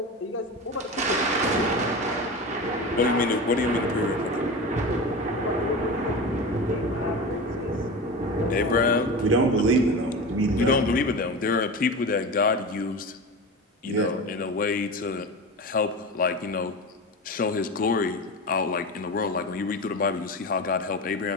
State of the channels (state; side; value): normal; both; correlation 0.27